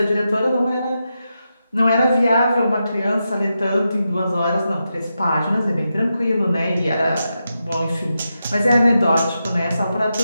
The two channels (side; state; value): both; inverted; correlation -0.87